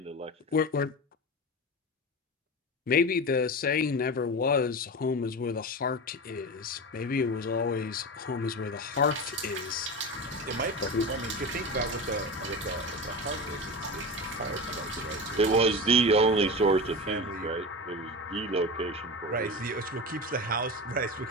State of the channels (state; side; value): normal; both; correlation 0.26